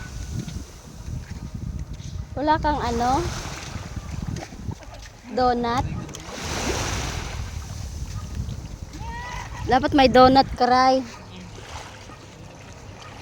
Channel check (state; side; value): identical; both; correlation 1.00